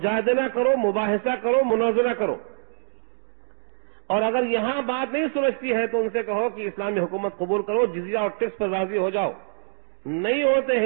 کرو، مباحثہ کرو، مناظرہ کرو، اور اگر یہاں بات نہیں سمجھتی ہے تو ان سے کہو کہ اسلامی حکومت قبول کرو، جزیہ اور ٹیکس پر راضی ہو جاؤ، نہیں ہوتے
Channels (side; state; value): left; silent; digital silence